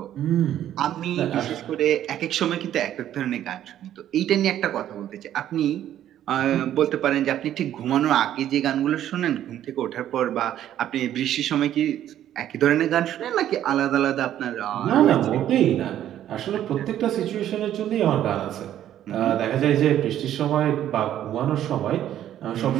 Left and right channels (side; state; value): left; quieter; 11.5 dB